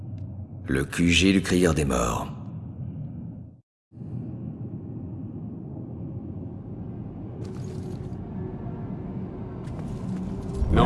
Le QG du Crieur des Morts.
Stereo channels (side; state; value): both; identical; correlation 1.00